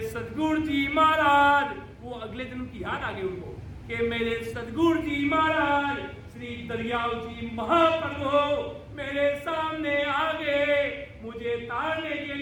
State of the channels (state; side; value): identical; both; correlation 1.00